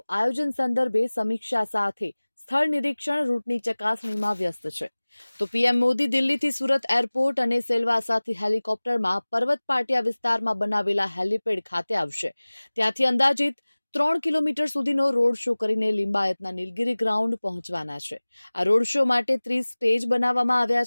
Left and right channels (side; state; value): both; inverted; correlation -1.00